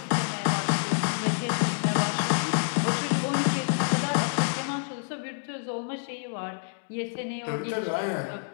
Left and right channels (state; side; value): silent; right; digital silence